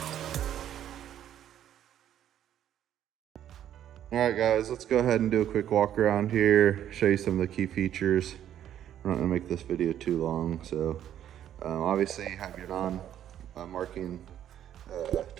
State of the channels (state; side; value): quieter; left; 10.7 dB